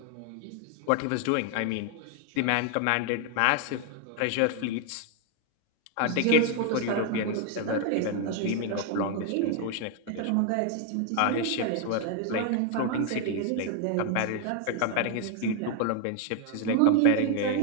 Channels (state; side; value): different; both; correlation 0.00